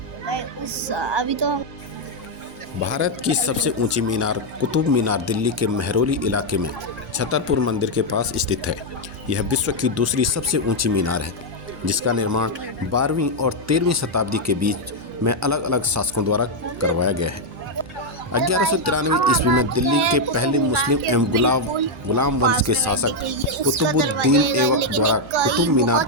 उस अभी तो हम भारत की सबसे ऊंची मीनार कुतुब मीनार दिल्ली के मेहरौली इलाके में छतरपुर मंदिर के पास स्थित है। यह विश्व की दूसरी सबसे ऊंची मीनार है, जिसका निर्माण 12वीं और 13वीं शताब्दी के बीच में अलग अलग शासकों द्वारा करवाया गया है। 1193 ईस्वी में दिल्ली के पहले मुस्लिम एवं गुलाम वंश के शासक कुतुबुद्दीन ऐबक द्वारा कुतुब मीनार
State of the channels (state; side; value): normal; both; correlation 0.00